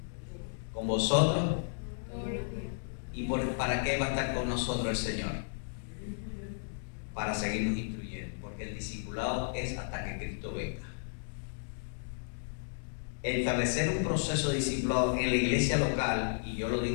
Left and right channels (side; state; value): right; silent; digital silence